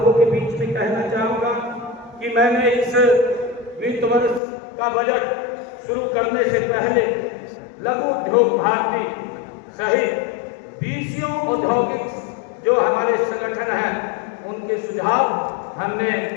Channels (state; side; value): drops out; right; at 4.4 s